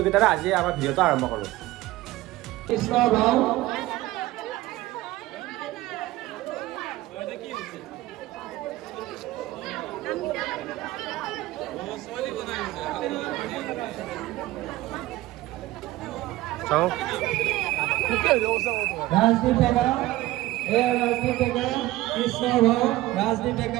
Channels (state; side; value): quieter; left; 17.3 dB